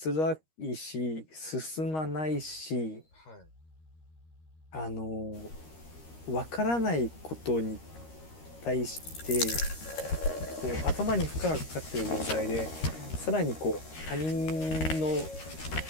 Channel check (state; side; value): late; right; 13 ms